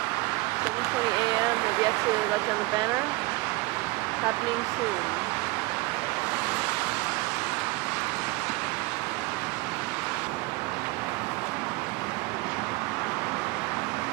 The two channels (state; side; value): quieter; left; 23.8 dB